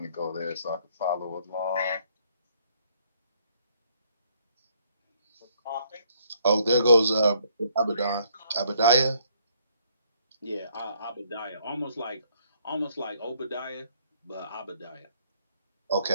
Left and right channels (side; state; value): both; inverted; correlation -0.67